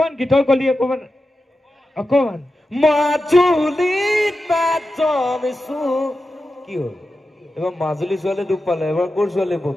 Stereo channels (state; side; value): normal; both; correlation 0.91